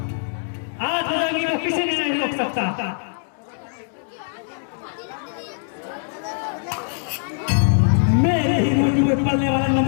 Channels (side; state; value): right; silent; 60 dB below the other